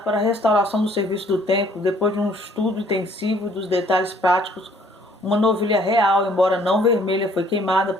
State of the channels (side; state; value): both; normal; correlation 0.60